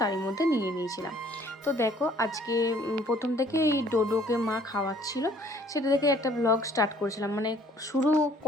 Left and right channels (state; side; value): normal; both; correlation 0.58